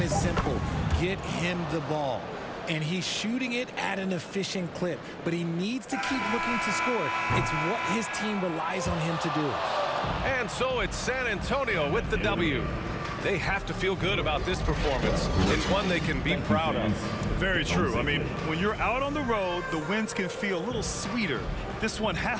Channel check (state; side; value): identical; both; correlation 1.00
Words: is simple. Get him the ball. And he's shooting it at an efficient clip, but he needs to keep looking to score. It's what his team relies on him to do. And so it's San Antonio with the W. They have to feel good about this performance. It's one they can be proud of. Very true. I mean, when you're out on the road, the wins can feel a little sweeter. This one